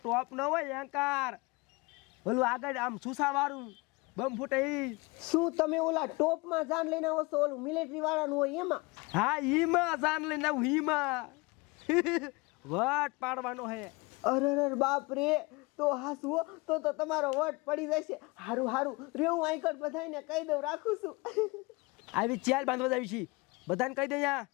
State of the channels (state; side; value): quieter; right; 25.7 dB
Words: ટોપ ન હોય એન્કાર, ઓલું આગળ આમ સુસા વાળું બમ ફૂટે. શું તમે ઓલા ટોપ માં જાન લઈને આવો છો? ઓલું મિલિટરી વાળાનું હોય એમાં? હા ઈમાં જાન લઈને આવું. ઈમાં વટ પાડવાનો હે. અરે બાપ રે, તો હાસવો તો તમારો વટ પડી જશે. હારું રે, હું આઈકડ બધાને કહી દઉં, રાખું છું. આવી ચાલ બાંધવા જાવી છી, બધાને કહી દે.